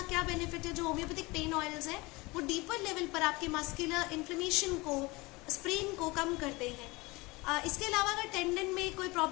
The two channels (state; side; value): quieter; right; 23.5 dB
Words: क्या बेनिफिट है? जो होम्योपैथिक पेन ऑयल्स हैं वो डीपर लेवल पर आपके मस्कुलर इन्फ्लेमेशन को, स्प्रेन को कम करते हैं. इसके अलावा अगर टेंडन में कोई